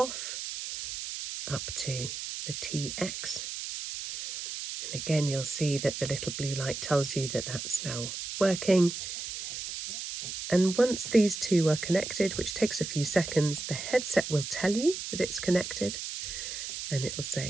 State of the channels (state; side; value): noise; right; hiss, 6 dB below the sound